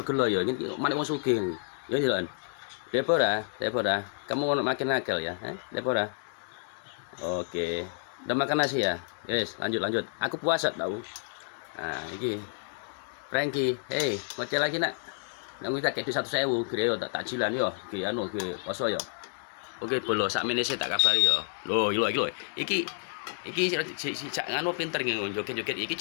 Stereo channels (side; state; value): right; silent; digital silence